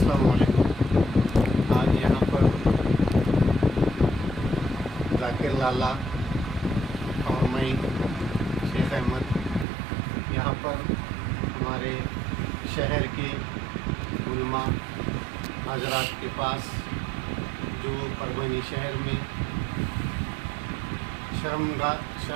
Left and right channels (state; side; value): drops out; left; at 9.7 s